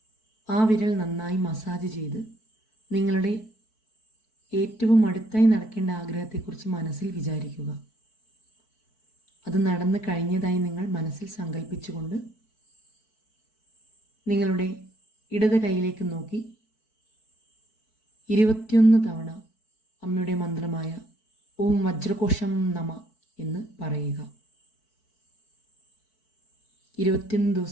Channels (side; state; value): right; late; 4.6 ms